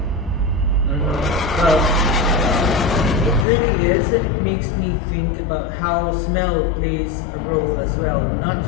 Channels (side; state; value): right; drops out; at 3.5 s